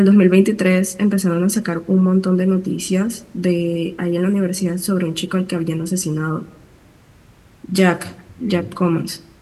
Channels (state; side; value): identical; both; correlation 1.00